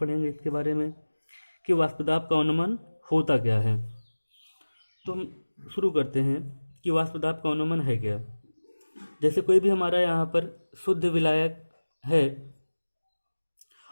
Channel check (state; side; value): inverted; both; correlation -1.00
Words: इसके बारे में कि वाष्पदाब का अनुमान होता क्या है। तो हम शुरू करते हैं कि वाष्पदाब का अनुमान है क्या। जैसे कोई भी हमारा यहाँ पर शुद्ध विलायक है